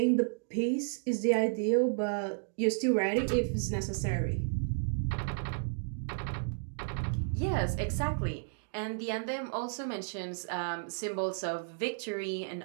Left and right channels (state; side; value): silent; left; digital silence